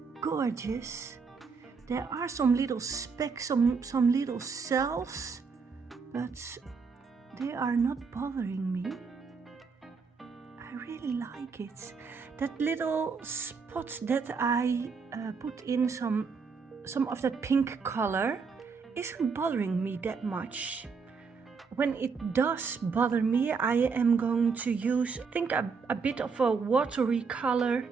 gorgeous. There are some little specks, some little cells, but they are not bothering me. I really like it. That little spot that I put in some of that pink color isn't bothering me that much. When it does bother me, I am going to use, I think, a bit of a watery color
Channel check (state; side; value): quieter; left; 5.2 dB